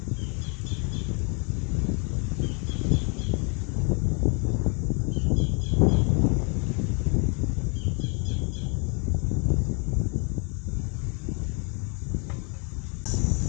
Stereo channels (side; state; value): right; quieter; 34.8 dB